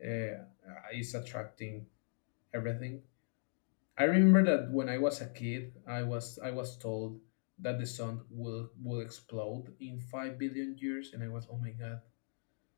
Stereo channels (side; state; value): right; silent; digital silence